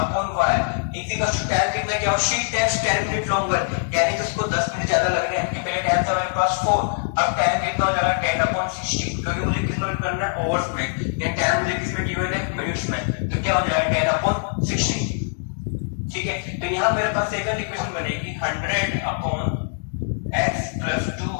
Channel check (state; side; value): silent; right; digital silence